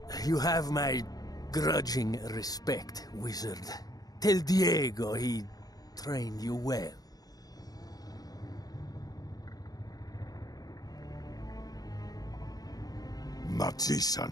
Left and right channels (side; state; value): right; late; 0.18 ms